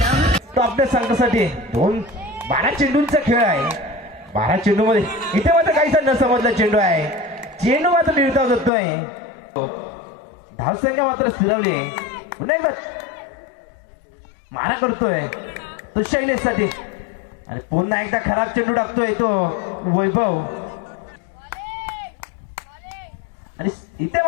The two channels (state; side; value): drops out; right; at 8.7 s